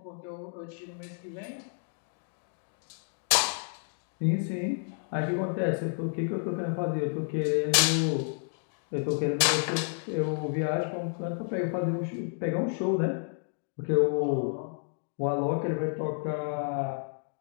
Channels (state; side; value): silent; right; 55 dB below the other